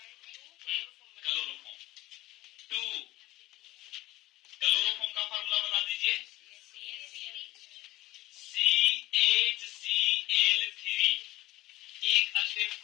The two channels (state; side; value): quieter; right; 17.6 dB